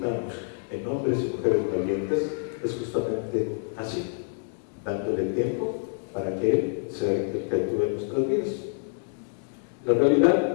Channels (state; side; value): silent; right; 59 dB below the other